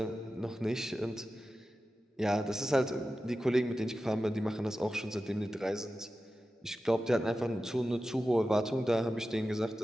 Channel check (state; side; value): normal; both; correlation 0.93